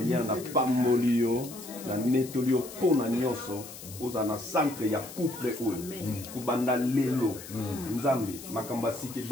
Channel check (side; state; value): left; noise; hiss, 14 dB below the sound